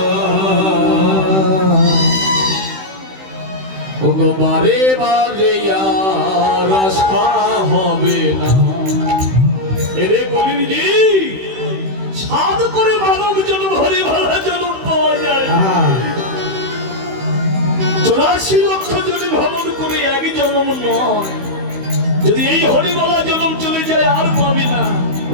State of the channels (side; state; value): left; late; 16 ms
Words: ওগো বারে বারে আর আশা হবে না। এরে কলিজি সাধ করে মানব জন্ম হরি ভালা জন্ম পাওয়া যায়, 84 লক্ষ জনে ভ্রমণ করে এক জন্ম নয়। যদি এই হরিমালা জন্ম চলে যায় আর পাবি না।